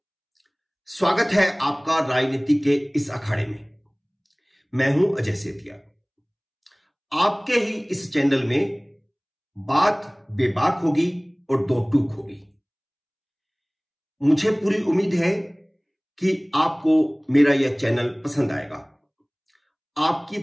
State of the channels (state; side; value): identical; both; correlation 1.00